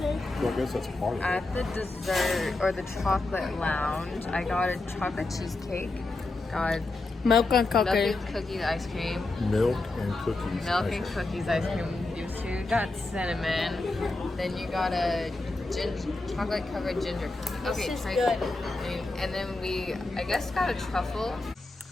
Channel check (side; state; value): right; quieter; 3.1 dB